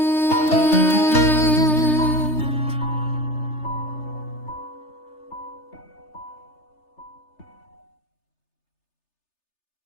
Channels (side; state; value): right; late; 3.3 ms